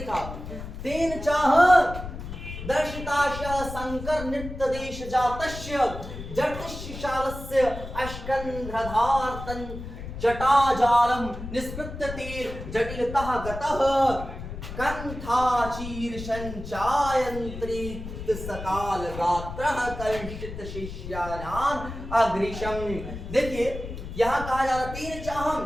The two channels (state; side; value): noise; left; rumble, 10 dB below the sound